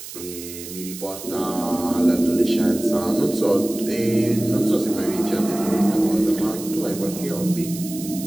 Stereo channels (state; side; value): noise; right; hiss, 12 dB below the sound